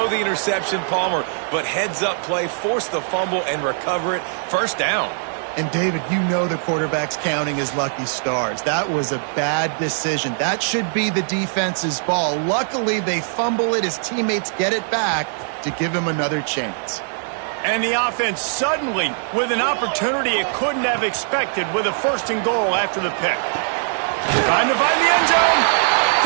the interception, Palmer, but heads-up play, force the fumble, and recover it. First down. And, David, you know the quarterback's counting his lucky stars. That was a bad decision. That should be the defense's ball. Luckily, they fumble it. His teammates get it back to give him another chance. And the offense suddenly, with an opportunity it couldn't have expected, with a 1st and goal after the pick. Trying to find the end zone.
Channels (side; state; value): left; silent; 65 dB below the other